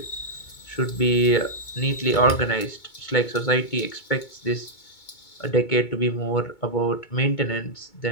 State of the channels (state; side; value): late; right; 2.2 ms